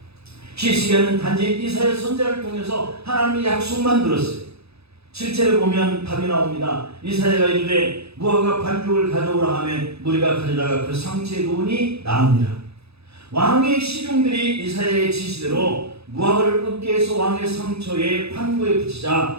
히스기야는 단지 이사야 선지자를 통해서 하나님의 약속만 들었어요. 7절에 보면 답이 나옵니다. 이사야가 이르되 무화과 반죽을 가져오라 하며 무리가 가져다가 그 상체에 놓으니 나으니라. 왕의 시중들이 이사야의 지시대로 무화과를 끄게 해서 왕의 상처에 판구에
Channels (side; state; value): left; late; 0.79 ms